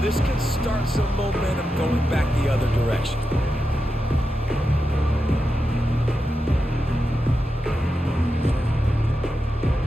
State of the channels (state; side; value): normal; both; correlation 0.89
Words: This can start some momentum going back the other direction.